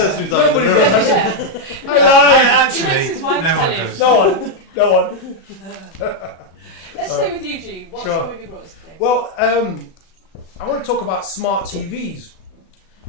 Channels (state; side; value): late; right; 37 ms